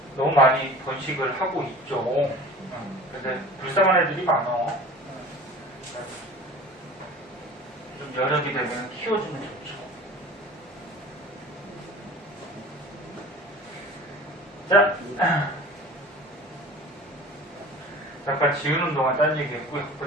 너무 많이 번식을 하고 있죠. 근데 불쌍한 애들이 많아. 좀 여력이 되면 키워주면 좋죠. 자, 잠깐 지우는 동안 딴 얘기 했고요.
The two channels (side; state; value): both; normal; correlation 0.41